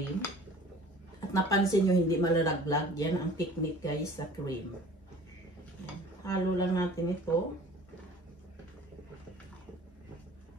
At napansin nyo, hindi malalaglag. Yan ang technique, guys, sa cream. Yan. Halo lang natin ito.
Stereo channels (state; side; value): normal; both; correlation 0.47